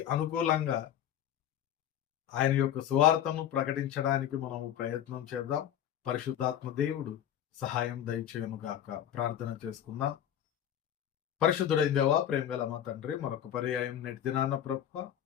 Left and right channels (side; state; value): right; quieter; 10.4 dB